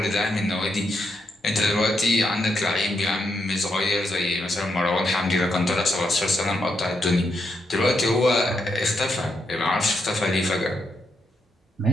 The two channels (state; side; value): normal; both; correlation 0.81